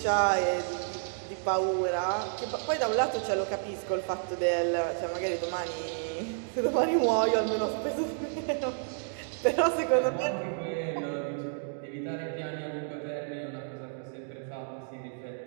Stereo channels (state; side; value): silent; left; digital silence